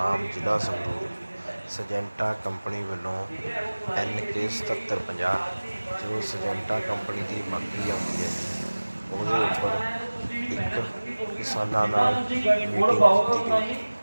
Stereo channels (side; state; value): both; inverted; correlation -1.00